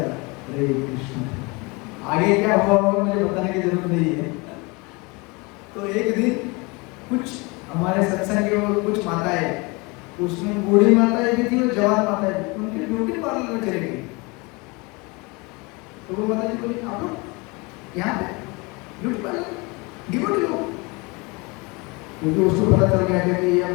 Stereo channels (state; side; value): quieter; right; 27.1 dB